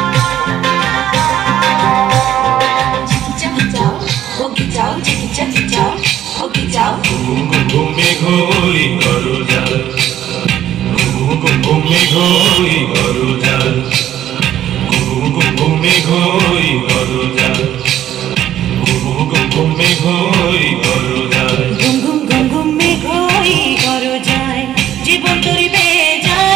ঘুমে ঘুরি করো যার ঘুমে ঘুরি করো যার ঘুমে ঘুরি করো যার ঘুমে ঘুরি করো যার ঘুম ঘুম ঘুম ঘুমে ঘুরি করো যায় জীবন তরি বেয়ে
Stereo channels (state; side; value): quieter; left; 11.7 dB